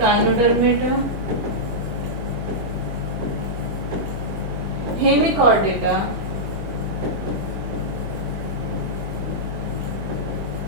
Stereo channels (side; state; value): left; late; 23 ms